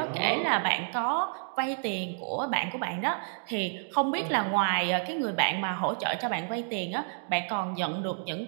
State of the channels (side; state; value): left; silent; digital silence